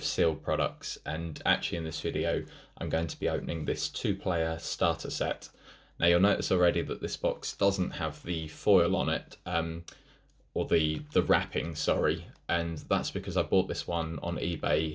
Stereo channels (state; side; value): identical; both; correlation 1.00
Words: sealed products, and actually in this video I'm going to be opening this two-player starter set. Now you'll notice already that this box doesn't have the foil on it, or the wrapping, sorry, and that's because I bought this one on